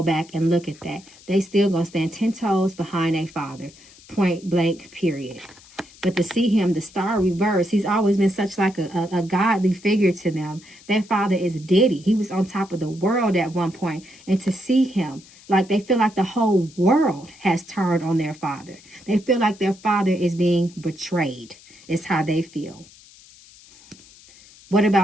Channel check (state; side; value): noise; left; hiss, 23 dB below the sound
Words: back and look at that. They still going to stand 10 toes behind their father. Point blank, period. But to see him, the star reverse, he's always been such like a godly figure to them. Their father is Diddy. He was on top of the world at one point. And to see him, like they feel like the whole world has turned on their father. They feel like their father is being betrayed. Is how they feel. What